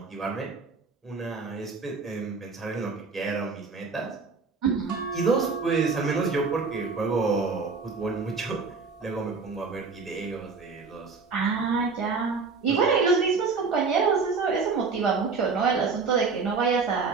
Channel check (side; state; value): left; quieter; 4.7 dB